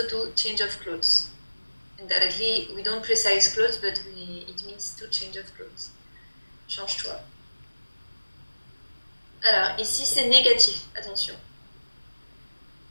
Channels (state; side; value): inverted; both; correlation -1.00